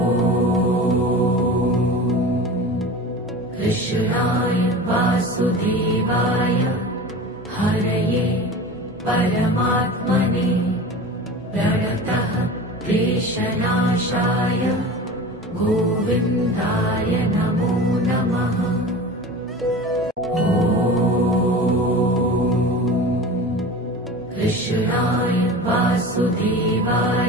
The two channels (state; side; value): normal; both; correlation 0.34